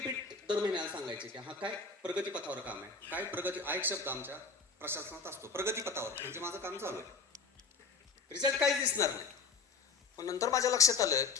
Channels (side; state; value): right; quieter; 4.7 dB